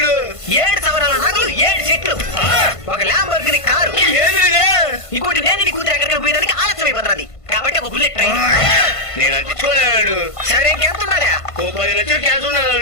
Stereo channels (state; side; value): late; right; 1.5 ms